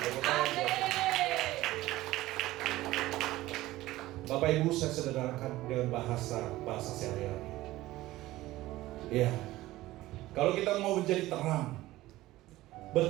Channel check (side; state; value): left; quieter; 17.0 dB